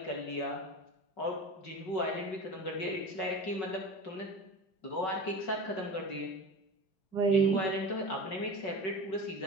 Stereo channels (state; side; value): late; right; 5.3 ms